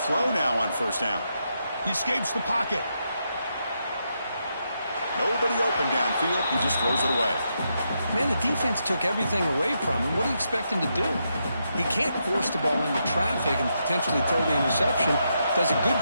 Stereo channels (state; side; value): inverted; both; correlation -0.82